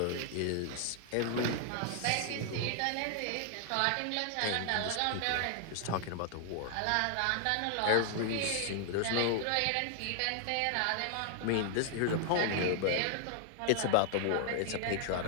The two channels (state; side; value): different; both; correlation 0.00